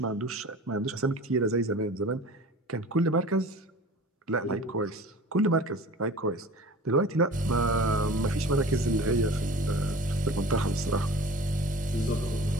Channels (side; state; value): both; normal; correlation 0.41